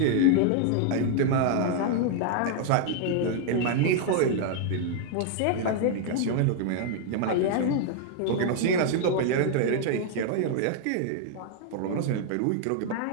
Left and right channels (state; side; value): different; both; correlation 0.00